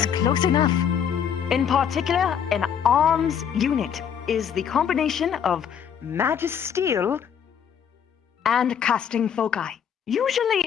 close enough. In particular, an arms unit is the combination of magisteel and casting foci.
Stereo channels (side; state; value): right; quieter; 8.1 dB